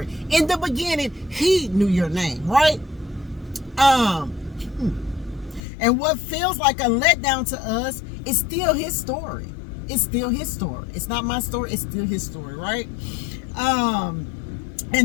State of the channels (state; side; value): drops out; right; at 5.6 s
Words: In the beginning, he knew your name, right? And what feels like a letdown to us is still his story. It's still his story. It's not my story. It's still his story, right?